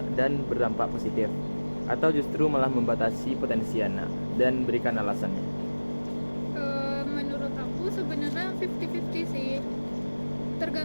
dan berdampak positif, atau justru malah membatasi potensi anak, dan berikan alasannya? Menurut aku sebenarnya 50-50 sih.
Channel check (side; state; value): both; inverted; correlation -1.00